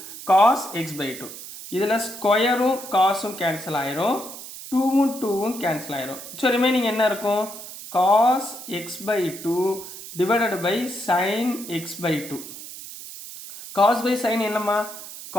cos x/2. இதில் ஸ்கொயரும் காசும் கேன்சல் ஆயிரும், 2ம் கேன்சல் ஆயிரும். ஸோ ரிமைனிங் என்ன இருக்கும்? cos x/2 divided by sin x/2. cos by sin என்னம்மா?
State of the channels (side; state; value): right; noise; hiss, 12 dB below the sound